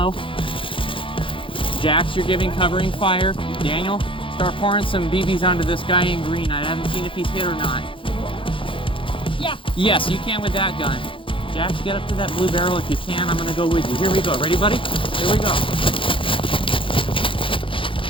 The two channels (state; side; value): late; right; 0.25 ms